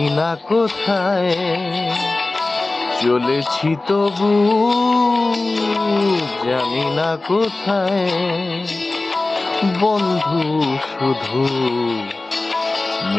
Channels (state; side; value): quieter; right; 3.1 dB